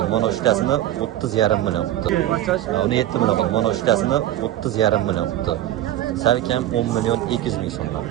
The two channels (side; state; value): left; quieter; 13.3 dB